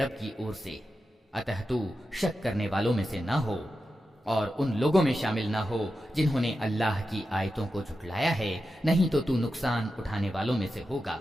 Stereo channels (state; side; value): normal; both; correlation 0.90